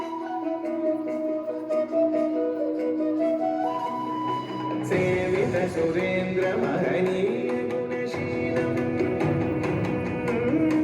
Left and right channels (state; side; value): identical; both; correlation 1.00